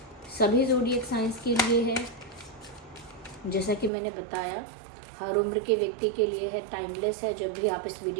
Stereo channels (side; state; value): left; drops out; at 3.9 s